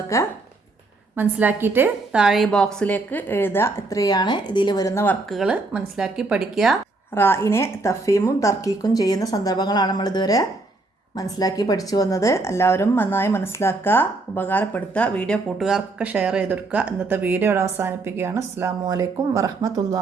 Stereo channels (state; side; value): quieter; left; 3.3 dB